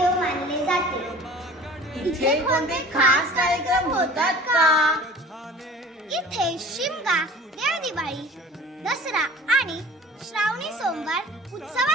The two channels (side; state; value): both; normal; correlation 0.44